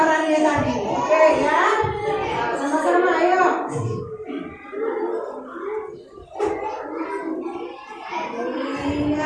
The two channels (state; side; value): identical; both; correlation 1.00